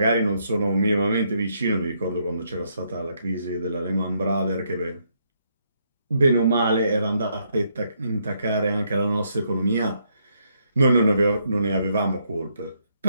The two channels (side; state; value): both; inverted; correlation -0.75